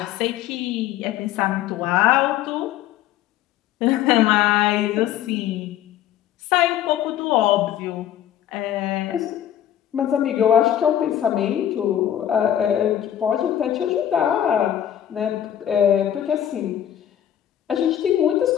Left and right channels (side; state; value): right; quieter; 11.0 dB